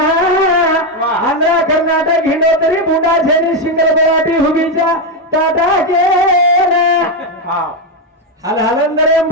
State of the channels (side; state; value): both; normal; correlation 0.06